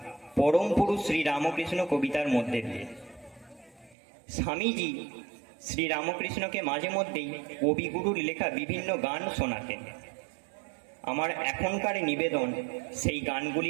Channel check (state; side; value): drops out; left; at 4.0 s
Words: পরম পুরুষ শ্রী রামকৃষ্ণ কবিতার মধ্যে দিয়ে। স্বামীজি শ্রী রামকৃষ্ণকে মাঝে মধ্যেই কবিগুরুর লেখা বিভিন্ন গান শোনাতেন। আমার এখনকার নিবেদন সেই